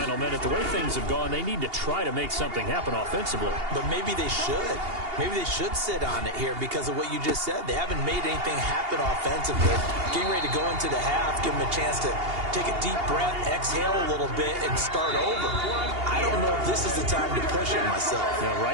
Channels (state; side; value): late; left; 2.8 ms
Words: minute. The way things have gone, they need to try to make something happen offensively. But maybe they should. Maybe they should sit on it here because of what you just said. They haven't made anything happen offensively. Getting ready to go into the half, give them a chance to take a deep breath, exhale a little bit, and start over. I don't know if this is the time to push it myself. Now,